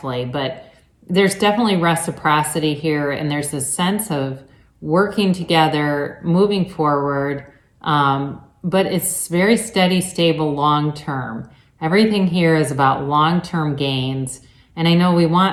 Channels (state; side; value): identical; both; correlation 1.00